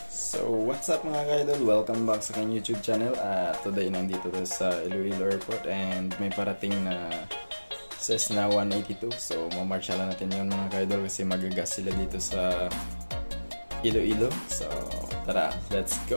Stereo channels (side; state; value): both; inverted; correlation -1.00